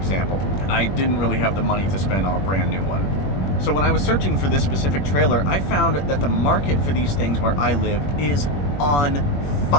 I didn't really have the money to spend on a brand new one. So when I was searching for this specific trailer, I found that the market for these things where I live is on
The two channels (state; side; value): late; right; 21 ms